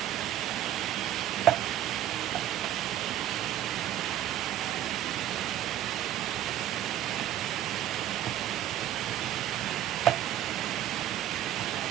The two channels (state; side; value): quieter; left; 12.0 dB